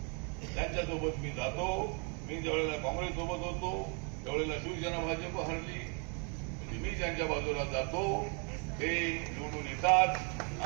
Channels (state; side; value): quieter; left; 36.9 dB